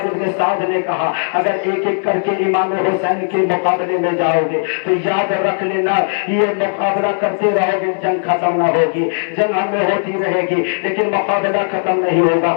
بن سعد نے کہا اگر ایک ایک کر کے امام حسین کے مقابلے میں جاؤ گے تو یاد رکھ لینا یہ مقابلہ کرتے رہو گے، جنگ ختم نہ ہوگی، جنگ ہمیں ہوتی رہے گی لیکن مقابلہ ختم نہیں ہوگا،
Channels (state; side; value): silent; right; digital silence